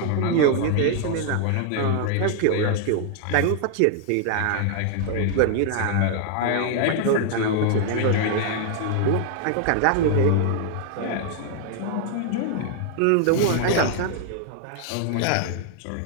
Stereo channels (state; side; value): different; both; correlation 0.00